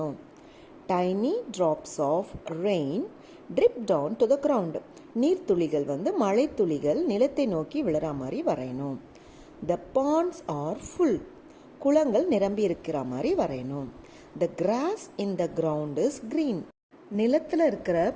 Tiny drops of rain drip down to the ground. நீர்த்துளிகள் வந்து மழை துளிகள் நிலத்தை நோக்கி விழுற மாதிரி வரையணும். The ponds are full. குளங்கள் நிரம்பி இருக்கிற மாதிரி வரையணும். The grass in the ground is green. நிலத்தில் இருக்கிற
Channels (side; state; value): both; identical; correlation 1.00